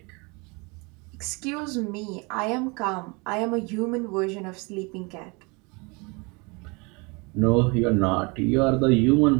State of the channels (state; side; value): quieter; left; 28.7 dB